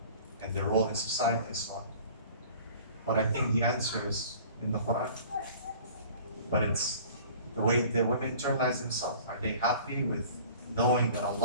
and their role in society and so on. But I think the answer is in the Quran. But it's the way the women internalize themselves. Are they happy with knowing that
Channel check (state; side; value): inverted; both; correlation -0.46